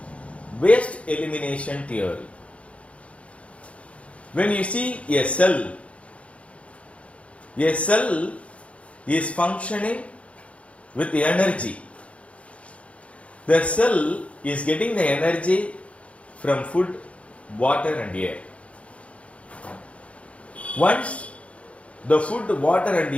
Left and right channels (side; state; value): right; late; 0.063 ms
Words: waste elimination theory. When you see a cell is functioning with the energy. The cell is getting the energy from food, water and air. Once the food, water and